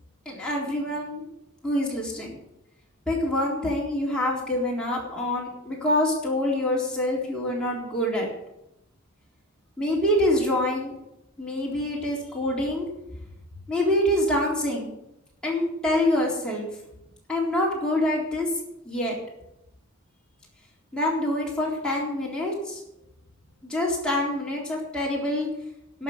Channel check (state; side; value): normal; both; correlation 0.34